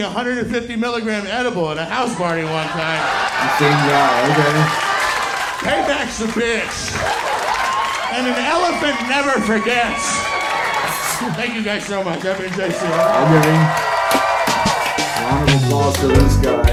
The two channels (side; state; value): both; identical; correlation 1.00